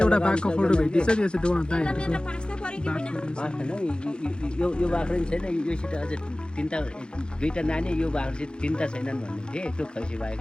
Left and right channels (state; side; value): late; right; 0.050 ms